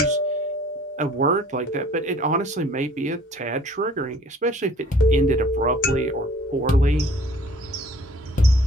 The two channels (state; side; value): normal; both; correlation 0.53